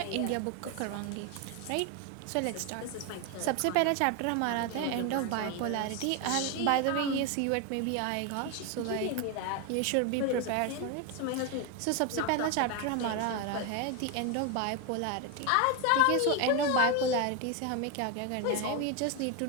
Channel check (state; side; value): different; both; correlation 0.02